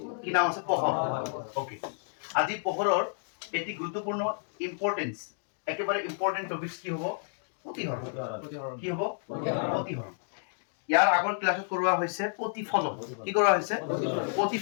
কি নাম আছে পোহৰ ওকে আজি পোহৰৰ এটি গুৰুত্বপূৰ্ণ ইম্পৰ্টেন্স একেবাৰে ইম্পৰ্টেন্ট টপিকস কি হ'ব প্ৰতিহৰণ কি হ'ব প্ৰতিহৰণ ইয়াৰ আগৰ ক্লাছত কৰোৱা হৈছে প্ৰতিফলন কি কৰোৱা হৈছে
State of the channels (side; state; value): right; silent; digital silence